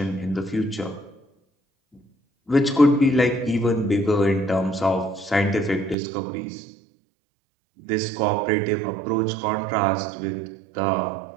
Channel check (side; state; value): left; drops out; at 6.0 s